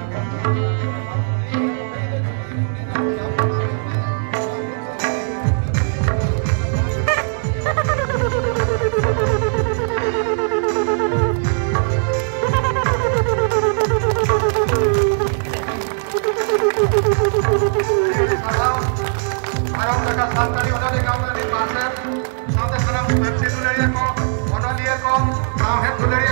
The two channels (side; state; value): left; silent; 66 dB below the other